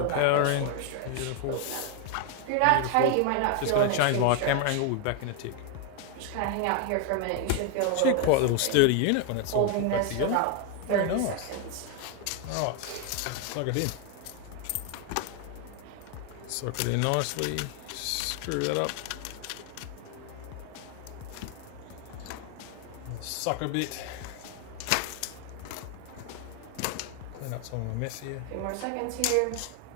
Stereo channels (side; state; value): both; different; correlation 0.01